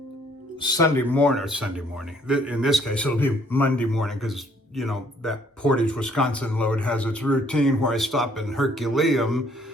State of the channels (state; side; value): normal; both; correlation 0.63